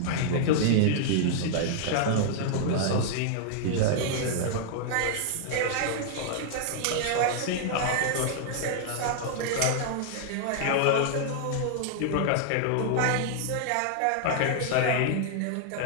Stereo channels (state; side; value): different; both; correlation -0.01